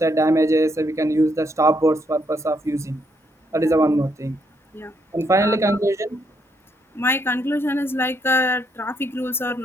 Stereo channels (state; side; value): normal; both; correlation 0.74